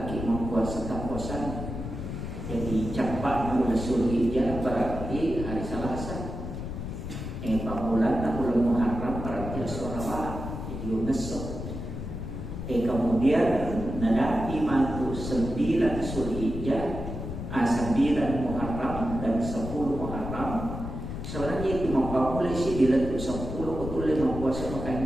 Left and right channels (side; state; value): left; noise; rumble, 6 dB below the sound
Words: puasa tak puasa. Jadi cepat bulan Zulhijjah berarti hari Selasa. Bulan Muharram berarti Selasa. Jadi besok. Kemudian nanti mantu 9 Zulhijjah, 9 Muharram dan 10 Muharram. Sebenarnya itu boleh sih diletuk 10 betul 5 puasa